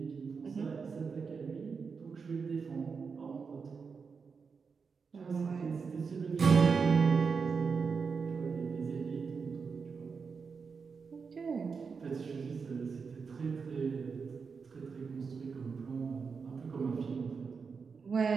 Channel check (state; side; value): quieter; left; 5.4 dB